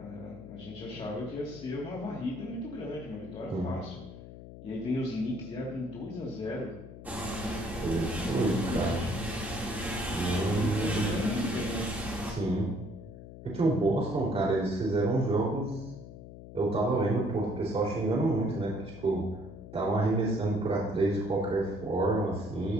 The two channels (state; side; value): noise; left; hum, 14 dB below the sound